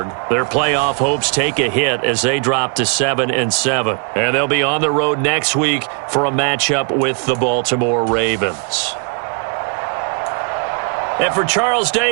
their playoff hopes take a hit as they drop to 7-7. And they'll be on the road next week for a matchup with the Baltimore Ravens. And for Charles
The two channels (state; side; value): quieter; left; 39.1 dB